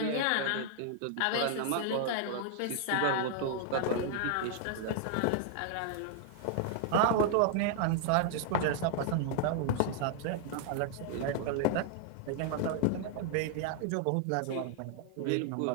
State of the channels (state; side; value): different; both; correlation 0.00